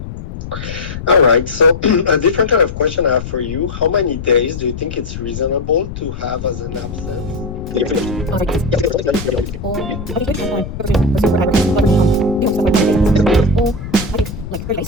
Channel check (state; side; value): noise; left; rumble, 9 dB below the sound